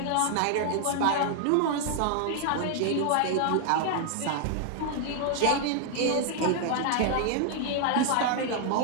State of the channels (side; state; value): both; different; correlation 0.00